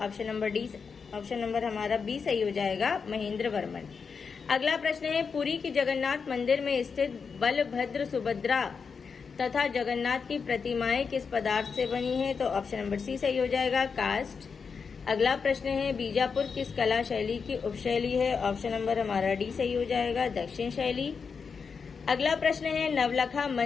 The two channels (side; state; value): right; quieter; 5.6 dB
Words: ऑप्शन नंबर हमारा बी सही हो जाएगा, महेंद्र वर्मन। अगला प्रश्न है, पुरी की जगन्नाथ मंदिर में स्थित बलभद्र, सुभद्रा तथा जगन्नाथ की प्रतिमाएं किस पदार्थ से बनी है? तो ऑप्शन नंबर सी सही हो जाएगा, कास्ट। अगला प्रश्न है, बीजापुर किस कला शैली की उपशैली है? ऑप्शन नंबर हमारा डी सही हो जाएगा, दक्षिण शैली। अगला प्रश्न है, नवलखा